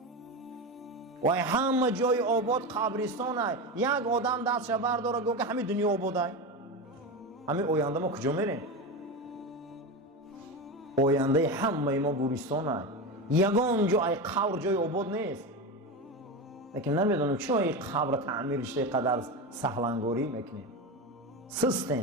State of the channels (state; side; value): normal; both; correlation 0.20